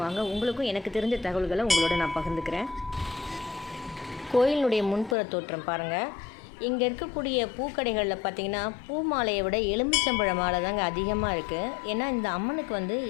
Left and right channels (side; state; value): right; drops out; at 5.2 s